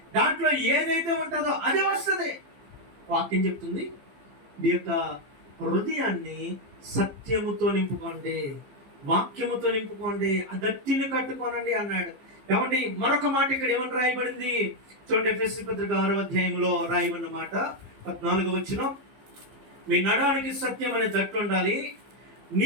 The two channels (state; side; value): late; left; 15 ms